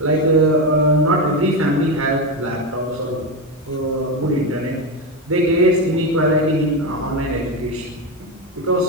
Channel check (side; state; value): both; normal; correlation 0.14